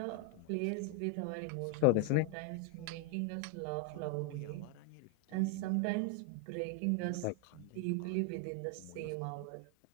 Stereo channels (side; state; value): both; different; correlation 0.01